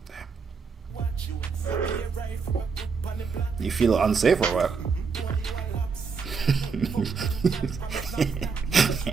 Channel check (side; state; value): left; quieter; 5.3 dB